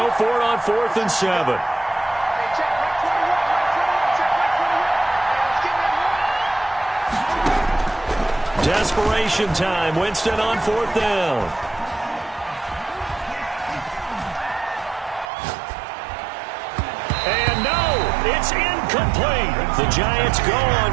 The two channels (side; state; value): left; drops out; at 15.3 s